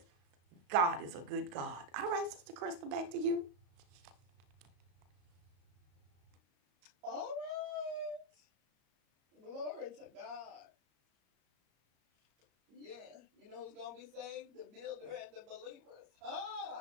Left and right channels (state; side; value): late; left; 34 ms